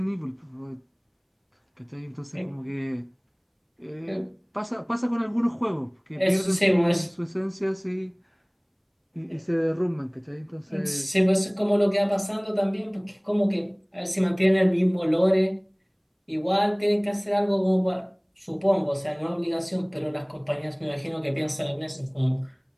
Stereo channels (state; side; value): identical; both; correlation 1.00